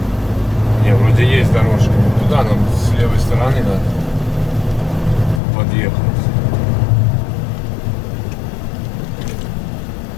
Не, вроде есть дорожка. Туда нам с левой стороны надо подъехать.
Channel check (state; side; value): drops out; right; at 5.4 s